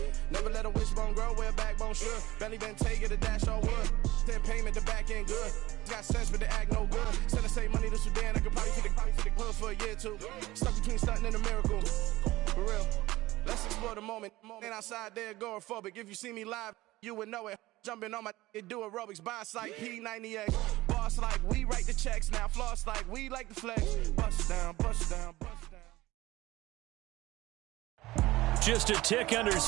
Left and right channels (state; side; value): quieter; left; 18.0 dB